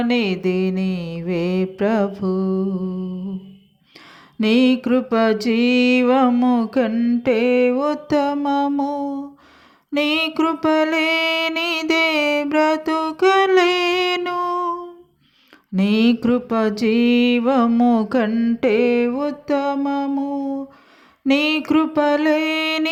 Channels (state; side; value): identical; both; correlation 1.00